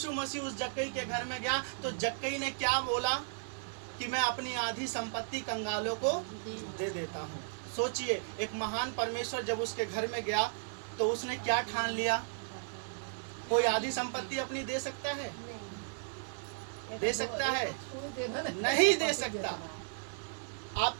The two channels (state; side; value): silent; left; digital silence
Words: मसीह उस जक्कई के घर में गया तो जक्कई ने क्या बोला कि मैं अपनी आधी संपत्ति कंगालों को दे देता हूँ। सोचिए, एक महान परमेश्वर जब उसके घर में गया तो उसने क्या ठान लिया? कोई आधी संपत्ति अपनी दे सकता है? दे सकता है? नहीं दे सकता।